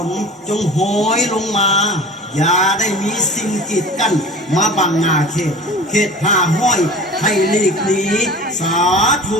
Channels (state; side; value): normal; both; correlation 0.39